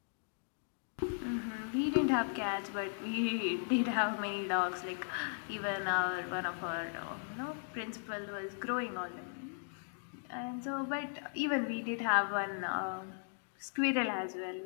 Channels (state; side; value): silent; right; digital silence